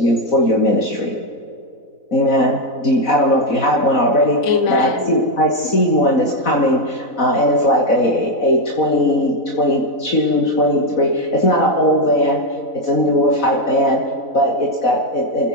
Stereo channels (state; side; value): late; right; 4.0 ms